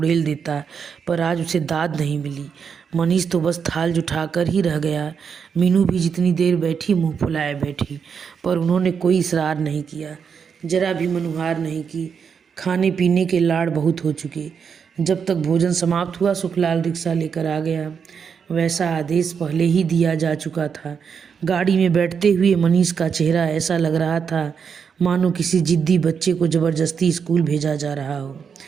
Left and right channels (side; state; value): left; quieter; 6.6 dB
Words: देता है। पर आज उसे दाद नहीं मिली। मनीष तो बस थाल जुठाकर ही रह गया। मीनू भी जितनी देर बैठी मुंह फुलाए बैठी, पर उन्होंने कोई इसरार नहीं किया, जरा भी मनुहार नहीं की। खाने पीने के लाड़ बहुत हो चुके। जब तक भोजन समाप्त हुआ सुखलाल रिक्शा लेकर आ गया। वैसा आदेश पहले ही दिया जा चुका था। गाड़ी में बैठते हुए मनीष का चेहरा ऐसा लग रहा था मानो किसी जिद्दी बच्चे को ज़बरदस्ती स्कूल भेजा जा रहा हो।